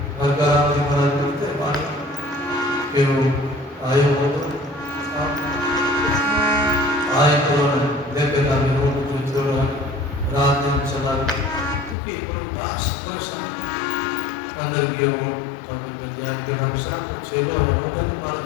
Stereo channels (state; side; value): drops out; right; at 12.0 s